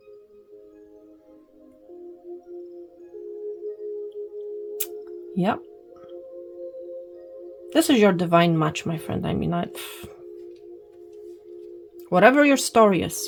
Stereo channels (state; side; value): identical; both; correlation 1.00